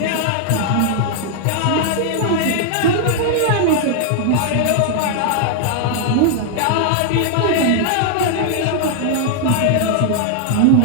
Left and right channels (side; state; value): both; different; correlation 0.00